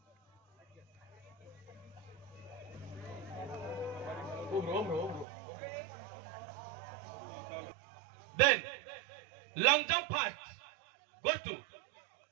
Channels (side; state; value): left; drops out; at 5.2 s